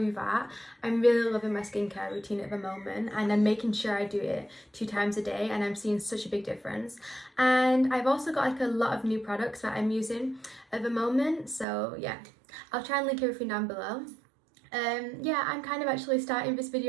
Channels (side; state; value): left; drops out; at 11.7 s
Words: that. I'm really loving my skincare routine at the moment and I'm making sure I do it 2 times a day, and I'm seeing such a big difference. And I've also got like a lot of new products that I'm using at the moment, so yeah, I'll try and link everything down below. Yeah, I'm kind of actually starting this